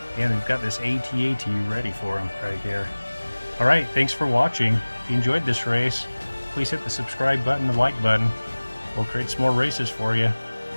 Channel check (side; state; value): both; inverted; correlation -1.00